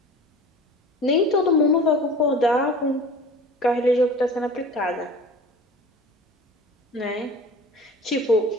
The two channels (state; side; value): normal; both; correlation 0.40